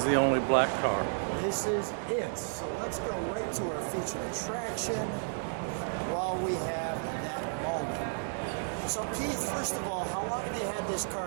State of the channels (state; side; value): silent; left; digital silence